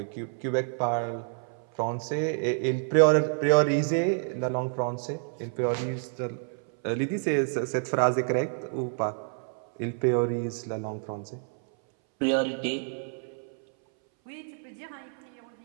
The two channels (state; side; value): silent; left; 59 dB below the other